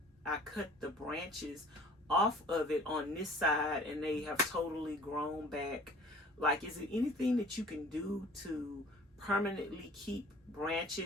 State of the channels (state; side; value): normal; both; correlation 0.50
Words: I cut the branches off of it on this side and they have totally grown back. Like, is there anything that you can do to permanently keep